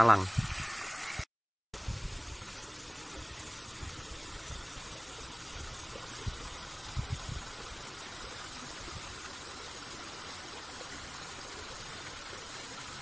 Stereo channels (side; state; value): both; identical; correlation 1.00